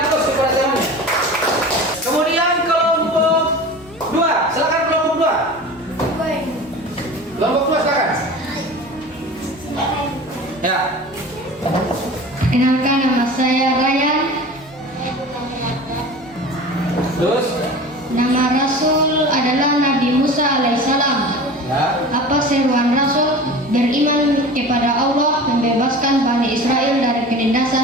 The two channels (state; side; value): normal; both; correlation 0.36